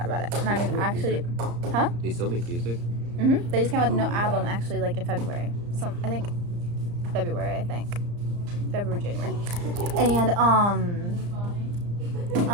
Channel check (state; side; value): late; left; 34 ms